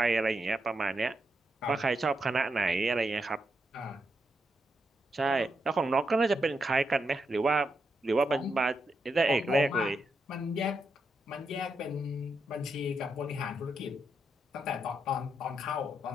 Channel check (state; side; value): normal; both; correlation 0.83